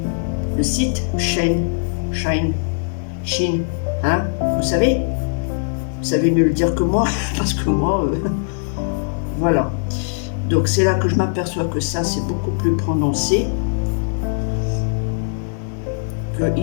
le site Shine, hein, vous savez. Vous savez mieux le dire que moi, parce que moi, voilà. Donc c'est là que je m'aperçois que ça, c'est beaucoup plus prononcé. Que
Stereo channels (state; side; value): silent; right; digital silence